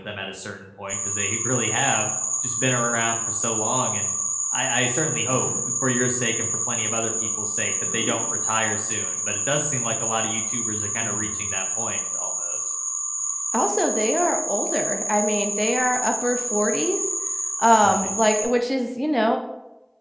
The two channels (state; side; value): identical; both; correlation 1.00